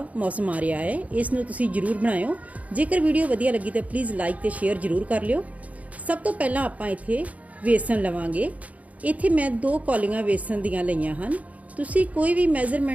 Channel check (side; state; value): left; late; 0.070 ms